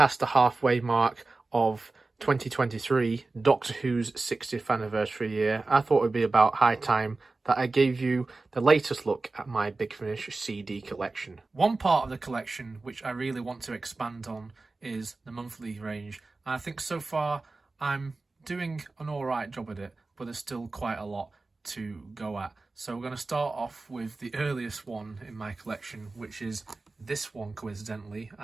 the halfway mark of 2023, Doctor Who's 60th anniversary year, I thought it would be about high time that I gave you the latest look at my Big Finish CD collection. One part of the collection which I really want to expand on is the monthly range. And I think so far I'm doing an alright job at it, but there's still quite a lot to go at. So we're going to start off with the earliest one in my collection, which is this one coincidentally,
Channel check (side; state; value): left; quieter; 3.5 dB